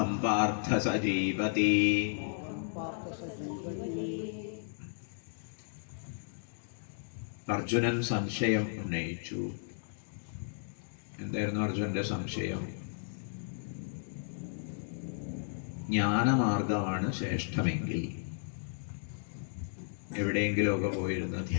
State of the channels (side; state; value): right; silent; digital silence